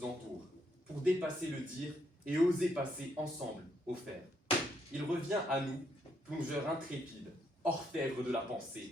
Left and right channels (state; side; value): normal; both; correlation 0.74